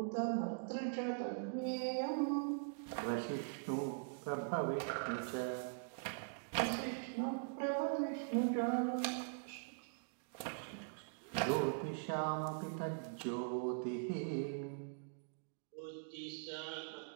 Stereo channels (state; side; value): silent; left; digital silence